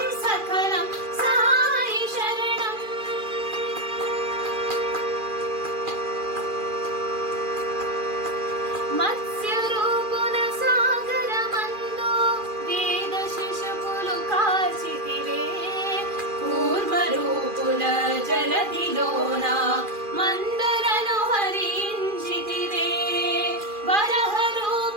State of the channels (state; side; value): late; left; 2.4 ms